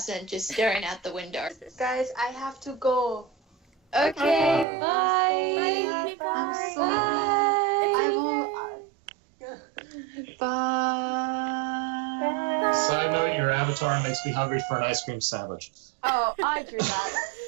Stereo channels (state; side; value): drops out; left; at 4.7 s